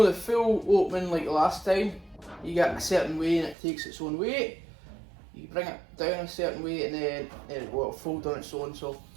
the full opening like the last time. You get a certain way and it takes its own weight. You bring it down a certain way and then it will fold on its own, so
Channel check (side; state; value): left; drops out; at 3.6 s